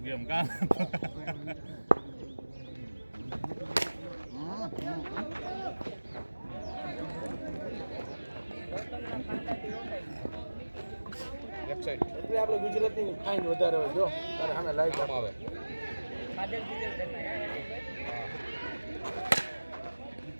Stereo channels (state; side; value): inverted; both; correlation -1.00